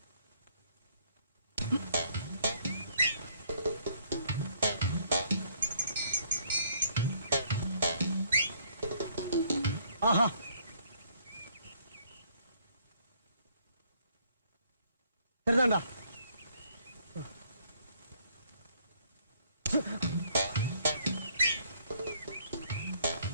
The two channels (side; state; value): both; inverted; correlation -0.65